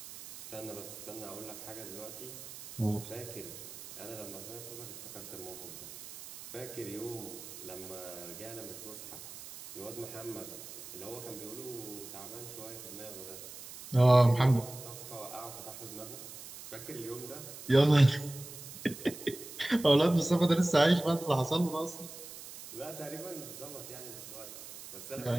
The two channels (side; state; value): right; noise; hiss, 13 dB below the sound